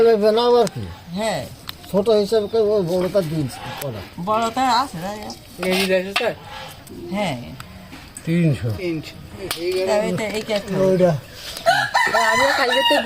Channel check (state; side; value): identical; both; correlation 1.00